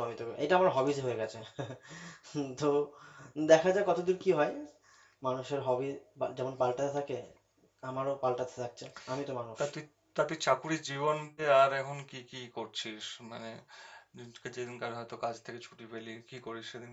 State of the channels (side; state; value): both; identical; correlation 1.00